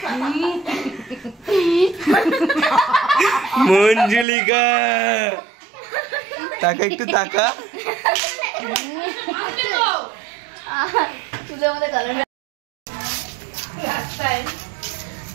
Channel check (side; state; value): left; drops out; at 4.2 s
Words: মঞ্জুলিকা তাকা, একটু তাকা।